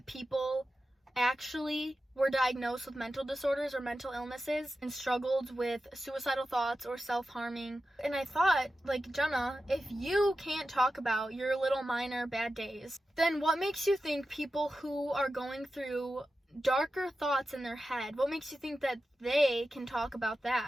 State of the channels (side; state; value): both; normal; correlation 0.92